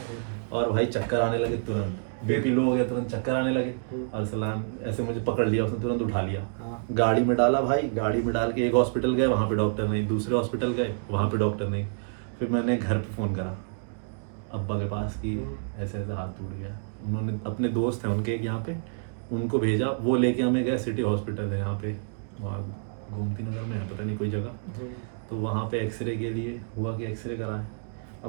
और भाई चक्कर आने लगे तुरंत, बीपी लो हो गया, तुरंत चक्कर आने लगे। अरसलान ऐसे मुझे पकड़ लिया, उसने तुरंत उठा लिया, गाड़ी में डाला भाई। गाड़ी में डाल के एक हॉस्पिटल गए, वहाँ पे डॉक्टर नहीं, दूसरे हॉस्पिटल गए, वहाँ पे डॉक्टर नहीं। फिर मैंने घर पे फ़ोन करा अब्बा के पास कि ऐसे ऐसे हाथ टूट गया। उन्होंने अपने दोस्त हैं उनके एक यहाँ पे, उनको भेजा, वो लेके हमें गए, सिटी हॉस्पिटल है यहाँ पे, वहाँ गोमती नगर में है, पता नहीं कोई जगह। तो वहाँ पे एक्सरे के लिए हुआ कि एक्सरे कराए।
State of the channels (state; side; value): silent; left; digital silence